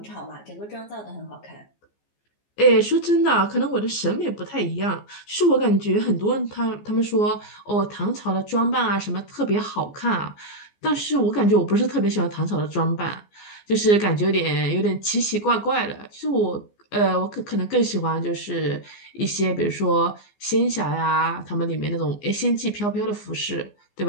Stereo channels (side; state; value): right; late; 15 ms